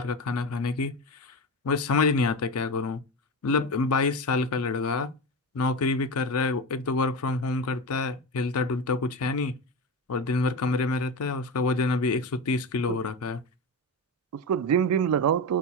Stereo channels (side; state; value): both; normal; correlation 0.21